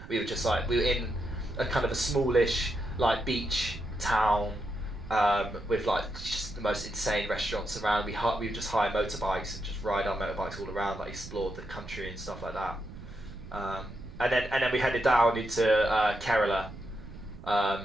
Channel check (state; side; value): noise; right; rumble, 14 dB below the sound